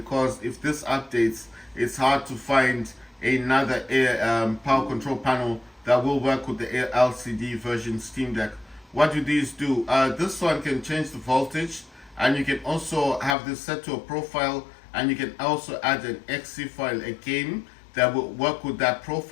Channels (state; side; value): drops out; right; at 13.4 s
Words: if this updates, it's hard to find another power control panel that will work with the LCD version Steam Deck. What do these do? This one can change the voltage, and you can also have this set to a profile, and you can also add an exe file, a game that will work with that